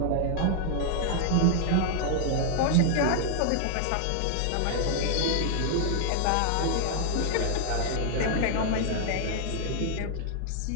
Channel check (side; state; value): both; different; correlation 0.00